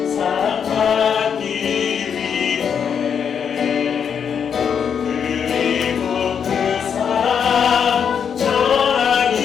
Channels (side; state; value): right; quieter; 7.4 dB